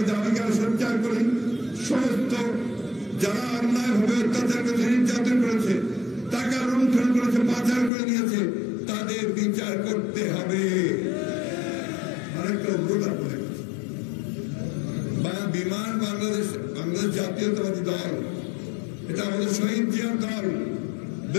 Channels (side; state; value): right; drops out; at 7.9 s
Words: দাবিকে সঞ্চার করি। সমস্ত যারা অন্যায়ভাবে অত্যাচার করেছে, নির্যাতন করেছে, টাকা লুণ্ঠন করেছে, পাচার করে নিয়েছে, তাদের বিচার করতে হবে। আরেকটা অনুরোধ আপনাদের কাছে, বিমান বাংলাদেশ জাতীয়তাবাদী দল, এটা আমাদের শহীদ জিয়ার দল,